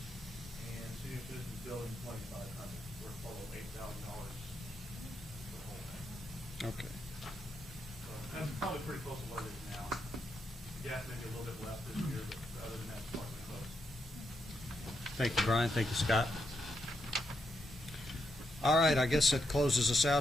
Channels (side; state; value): both; normal; correlation 0.82